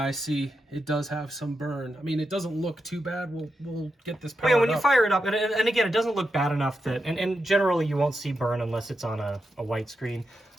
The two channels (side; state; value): both; normal; correlation 0.87